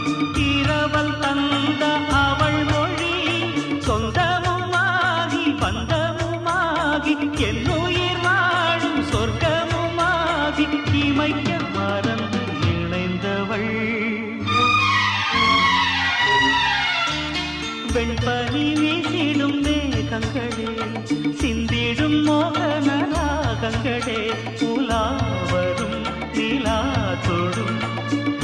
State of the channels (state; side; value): identical; both; correlation 1.00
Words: இரவல் தந்த அவள் மொழி சொந்தமுமாகி பந்தமுமாகி என்னுயிர் வாழும் சொர்க்கமுமாகி இமைக்க மறந்து இணைந்தவள் வெண்பனி வீசிடும் மேகங்களே சிந்திடும் மோகன ராகங்களே உலாவரும் நிலா தொடும்